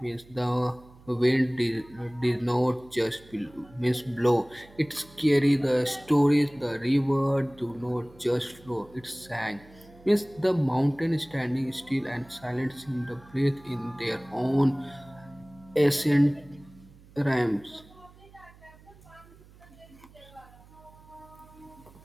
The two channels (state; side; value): noise; right; hum, 24 dB below the sound